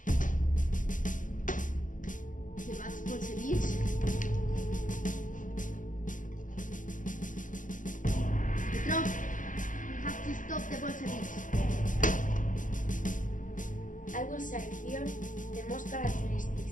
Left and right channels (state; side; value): late; right; 0.38 ms